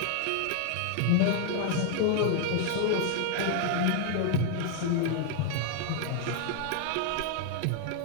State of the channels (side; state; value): both; different; correlation 0.00